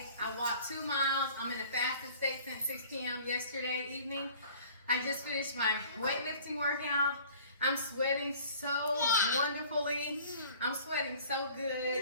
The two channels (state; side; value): inverted; both; correlation -0.50